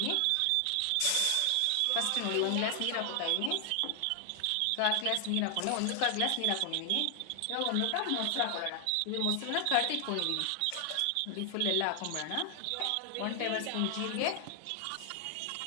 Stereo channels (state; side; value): different; both; correlation 0.00